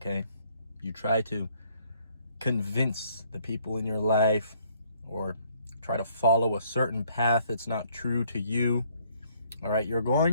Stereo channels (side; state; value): both; inverted; correlation -0.66